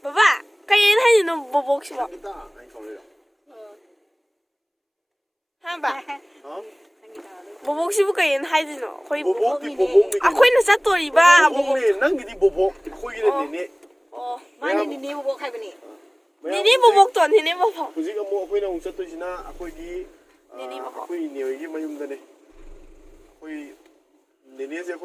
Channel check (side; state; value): both; identical; correlation 1.00